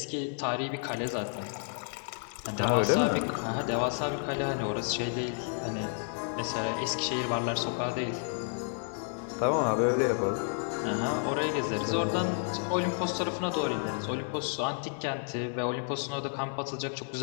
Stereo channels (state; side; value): silent; right; 57 dB below the other